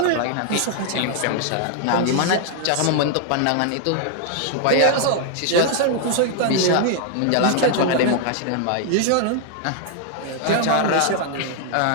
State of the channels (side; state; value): both; different; correlation 0.00